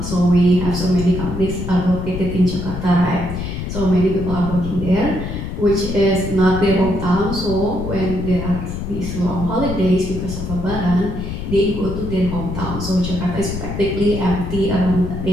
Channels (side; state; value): left; noise; rumble, 6 dB below the sound